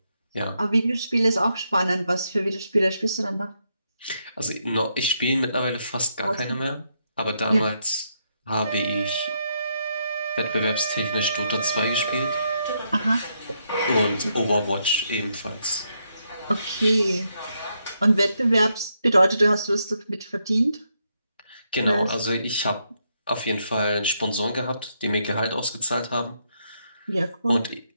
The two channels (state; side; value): inverted; both; correlation -0.79